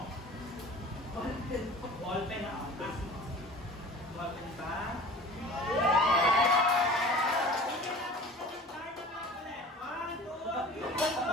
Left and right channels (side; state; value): both; normal; correlation 0.41